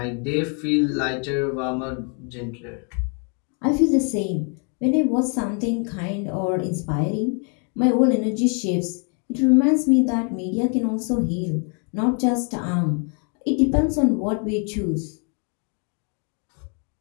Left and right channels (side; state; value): right; quieter; 39.4 dB